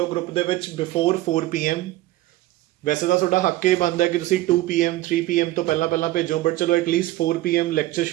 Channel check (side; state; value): left; quieter; 16.5 dB